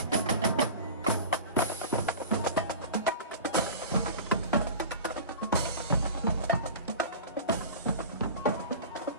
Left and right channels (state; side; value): inverted; both; correlation -0.36